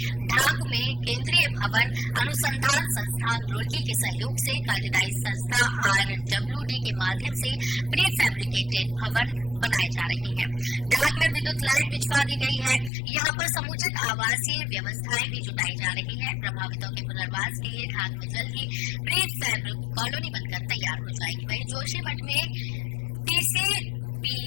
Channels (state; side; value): drops out; right; at 12.9 s